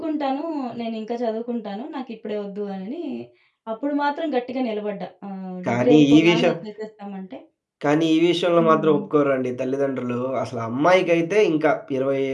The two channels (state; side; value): identical; both; correlation 1.00